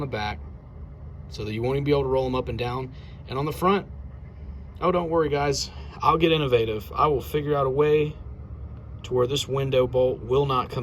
back so that you won't even be able to roll them up and down. And on the front, oh, don't worry guys, I'll get innovative. I will figure out a way to where this window bolt will not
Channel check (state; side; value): identical; both; correlation 1.00